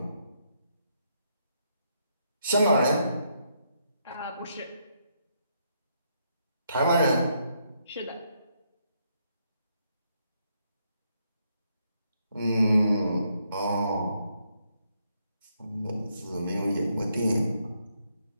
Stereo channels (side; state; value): both; inverted; correlation -0.76